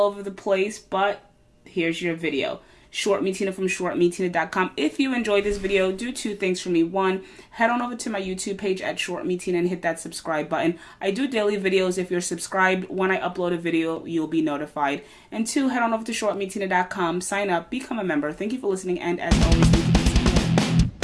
the place, but here's your video. Short Me Tina from shortmetina.com. If you enjoyed this video, do two things for me. One, head on over to my YouTube page at Short Me Tina and hit that subscribe button. I do daily videos. If you're subscribed, when I upload a video, you'll be notified. And two, head on over to shortmetina.com, sign up, become a member. Thank you for listening, and as always, thank you for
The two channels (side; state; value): both; identical; correlation 1.00